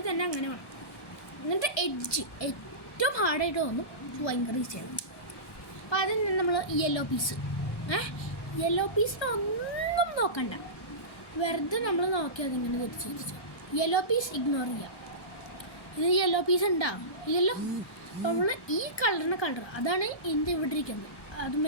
തന്നെ അങ്ങനെ വേണം. എന്നിട്ട് എഡ്ജ് ഏറ്റവും ഹാർഡായിട്ട് തോന്നും, ഭയങ്കര ഈസിയാണ്. അപ്പോൾ അതിന് നമ്മൾ യെല്ലോ പീസ് ഒന്നും നോക്കണ്ട, വെറുതെ നമ്മൾ നോക്കി അതിങ്ങനെ തിരിച്ച് യെല്ലോ പീസ് ഇഗ്നോർ ചെയ്യാം. ഇത് യെല്ലോ പീസ് ഉണ്ടാവും ഇല്ലല്ലോ. അപ്പോൾ നമ്മൾ ഈ കളർ അതാണ് ഇതിൻ്റെ ഇവിടെ ഇരിക്കുന്നത്.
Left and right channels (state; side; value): late; right; 1.1 ms